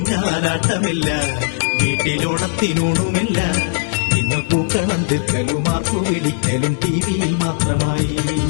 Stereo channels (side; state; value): right; silent; 67 dB below the other